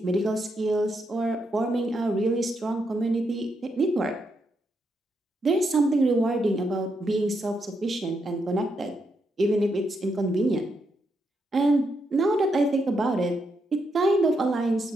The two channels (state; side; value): normal; both; correlation 0.81